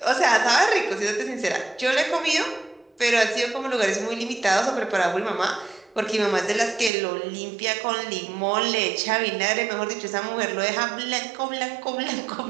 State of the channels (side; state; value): left; drops out; at 6.9 s